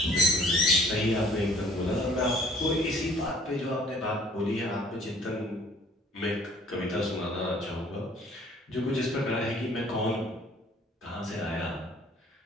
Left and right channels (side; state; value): both; normal; correlation 0.55